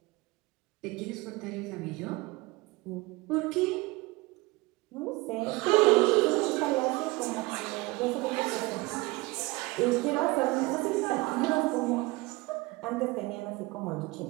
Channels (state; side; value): quieter; left; 22.9 dB